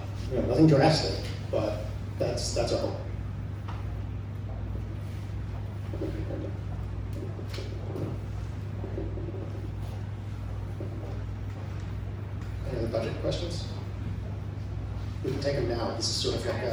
nothing drastic, but that's our hope. Any other budget questions? We can take them now. This is sort of like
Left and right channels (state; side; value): identical; both; correlation 1.00